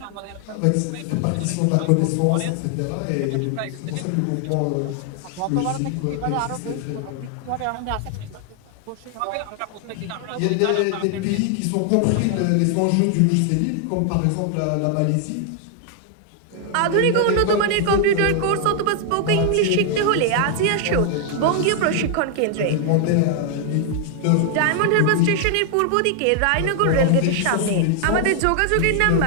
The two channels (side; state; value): both; different; correlation 0.00